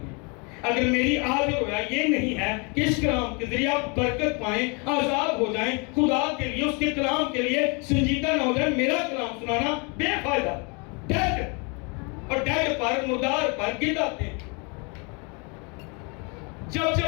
اگر میری آج رویا یہ نہیں ہے کہ اس کلام کے ذریعے آپ برکت پائیں، آزاد ہو جائیں، خدا کے لیے، اس کے کلام کے لیے سنجیدہ نہ ہو جائیں، میرا کلام سنانا بے فائدہ. ڈیڈ، اور ڈیڈ پر، مردار پر گرد آتے ہیں.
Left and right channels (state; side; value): quieter; right; 32.4 dB